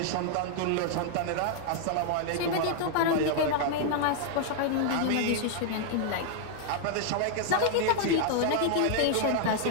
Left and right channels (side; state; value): both; different; correlation -0.01